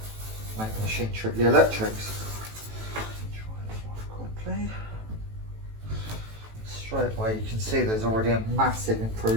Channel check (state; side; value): late; left; 18 ms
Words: make the machine trip the electrics. Try it off quickly. Straight away you can see there's already a massive